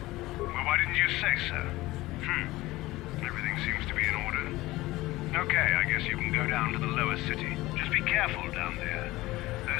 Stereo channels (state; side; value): quieter; right; 18.6 dB